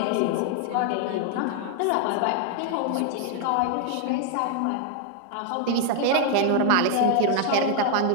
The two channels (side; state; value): both; different; correlation 0.00